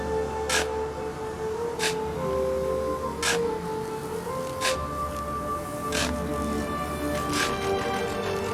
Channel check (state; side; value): identical; both; correlation 1.00